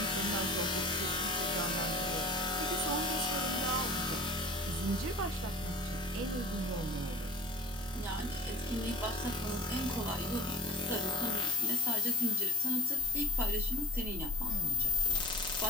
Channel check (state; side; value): normal; both; correlation 0.37